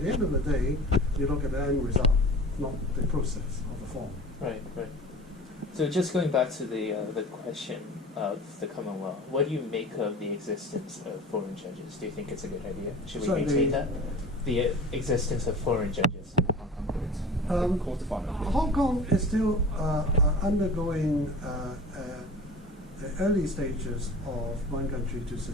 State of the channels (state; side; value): normal; both; correlation 0.39